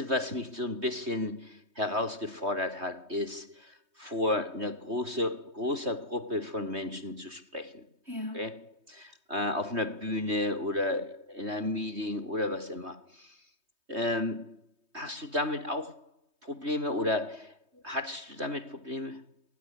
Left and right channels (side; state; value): left; late; 3.2 ms